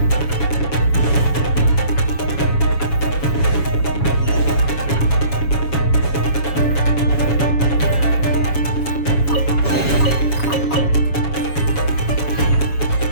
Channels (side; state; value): right; late; 7.1 ms